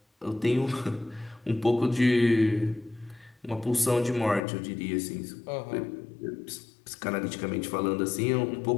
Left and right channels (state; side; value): drops out; right; at 4.4 s